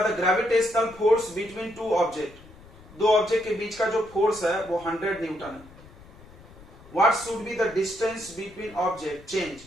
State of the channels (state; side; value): noise; left; rumble, 21 dB below the sound